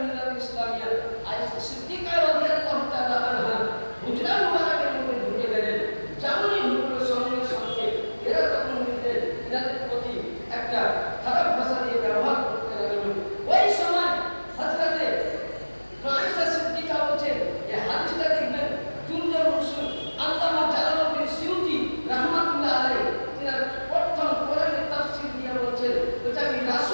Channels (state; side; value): inverted; both; correlation -1.00